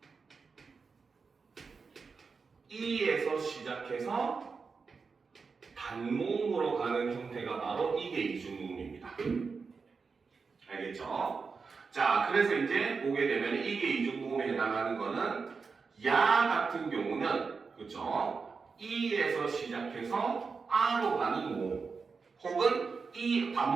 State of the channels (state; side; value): quieter; left; 5.0 dB